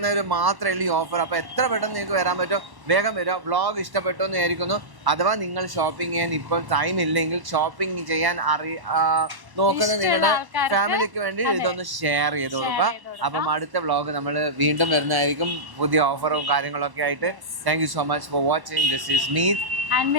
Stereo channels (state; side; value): late; left; 1.1 ms